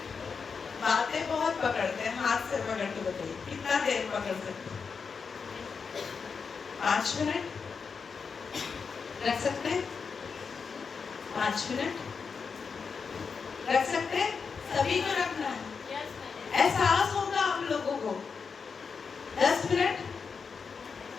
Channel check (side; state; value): right; quieter; 5.5 dB